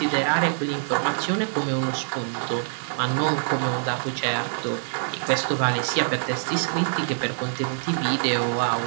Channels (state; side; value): silent; left; digital silence